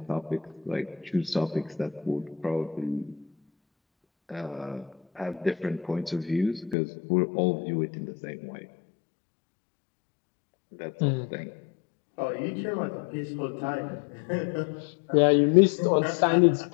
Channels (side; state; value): right; drops out; at 6.8 s